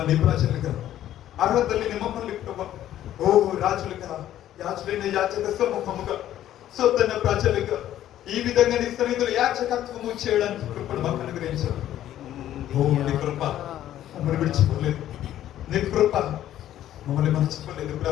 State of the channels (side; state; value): right; quieter; 12.3 dB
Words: నీ ప్రజలుగా అర్హత లేని మమ్మల్ని ప్రభు ఓ రాజులుగా యాజులైన యాచక సమూహముగా సొంతైన ప్రజలుగా ఈ విధంగా నీ సన్నిధిలో యాచకత్వము చేయడానికి కృపను మాకు అనుగ్రహించారు. ఓ నీ కృప మమ్మల్ని విడిచిపోలేదు, నీ కృప మమ్మల్ని మర్చిపోలేదు